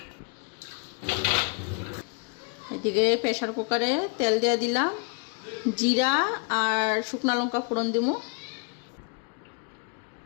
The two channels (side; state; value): right; quieter; 36.1 dB